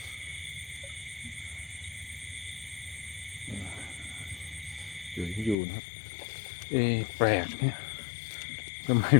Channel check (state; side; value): drops out; right; at 5.6 s